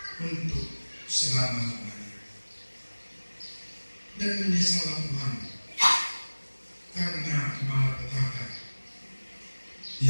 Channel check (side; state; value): both; inverted; correlation -1.00